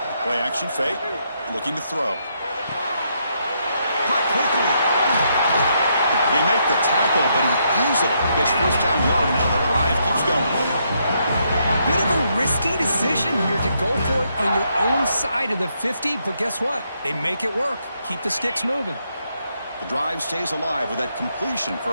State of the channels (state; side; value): inverted; both; correlation -0.76